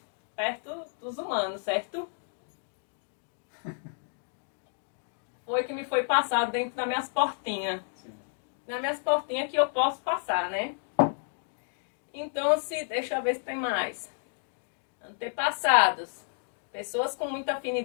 perto dos humanos, certo? Foi que me foi passado dentro das minhas portinhas. Sim. Nas minhas portinhas que eu posso passar, né? Então, deixa eu ver se tem mais. Antepassados. Pessoas com muita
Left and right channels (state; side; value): silent; right; digital silence